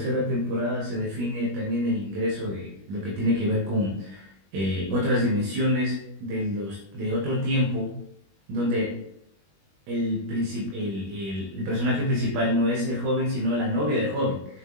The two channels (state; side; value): late; left; 21 ms